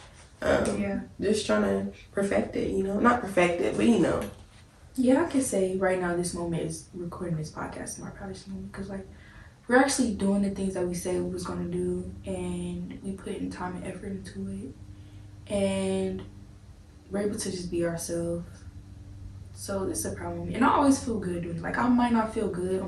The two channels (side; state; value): both; identical; correlation 1.00